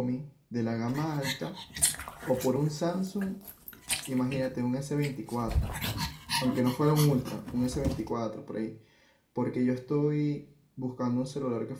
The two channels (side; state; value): both; identical; correlation 1.00